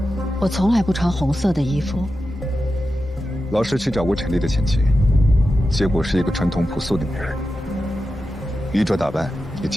我从来不穿红色的衣服。老师去找过陈丽的前妻，结果是一个传统朴素的女人，衣着打扮也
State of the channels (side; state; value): both; normal; correlation 0.91